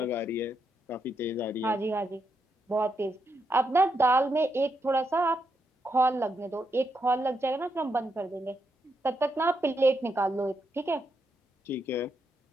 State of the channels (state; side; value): normal; both; correlation 0.81